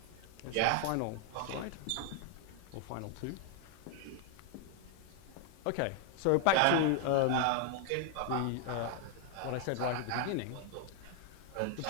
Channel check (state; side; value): different; both; correlation 0.00